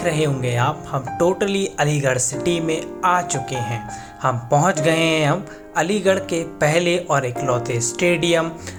रहे होंगे आप, हम टोटली अलीगढ़ सिटी में आ चुके हैं। हम पहुंच गए हैं हम अलीगढ़ के पहले और इकलौते स्टेडियम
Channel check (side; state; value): both; identical; correlation 1.00